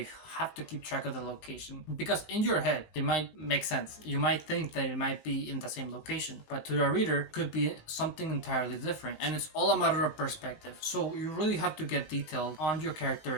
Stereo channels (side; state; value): right; late; 18 ms